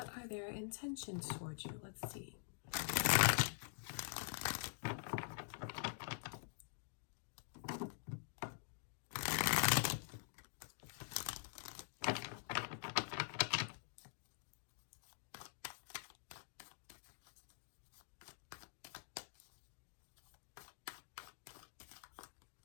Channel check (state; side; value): silent; right; digital silence